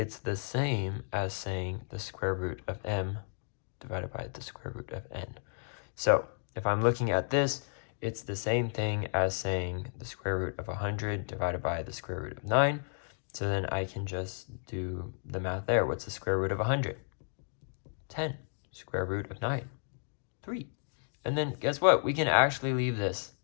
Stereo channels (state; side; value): silent; right; digital silence